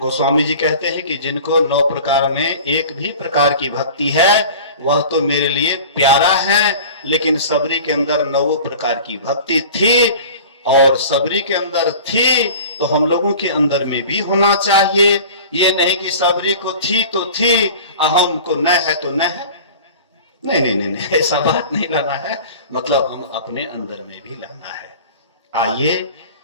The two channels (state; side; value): inverted; both; correlation -0.40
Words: जी कहते हैं कि जिनको 9 प्रकार में एक भी प्रकार की भक्ति है, वह तो मेरे लिए प्यारा है। लेकिन सबरी के अंदर 9 प्रकार की भक्ति थी, और सबरी के अंदर थी तो हम लोगों के अंदर में भी होना चाहिए। ये नहीं कि सबरी को थी तो थी, अहम को न है तो न है। नहीं, ऐसा बात नहीं लाना है। मतलब हम अपने अंदर में भी लाना है। आइए